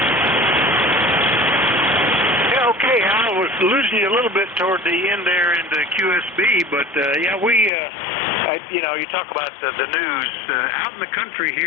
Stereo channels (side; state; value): right; drops out; at 7.7 s